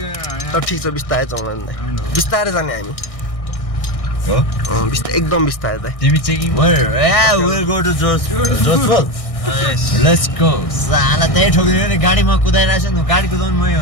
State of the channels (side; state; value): right; late; 1.6 ms